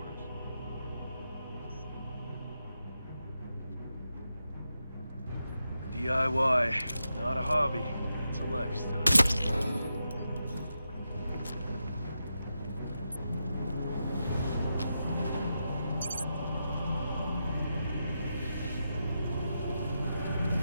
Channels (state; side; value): inverted; both; correlation -0.87